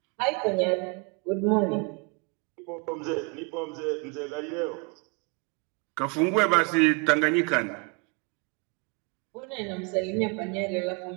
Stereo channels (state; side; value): quieter; left; 31.2 dB